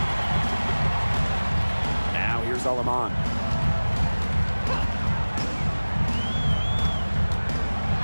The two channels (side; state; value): both; inverted; correlation -1.00